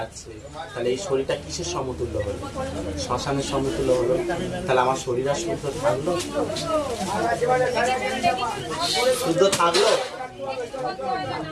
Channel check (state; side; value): identical; both; correlation 1.00